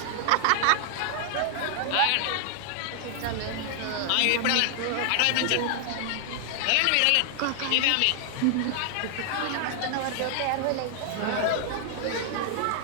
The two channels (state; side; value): different; both; correlation 0.00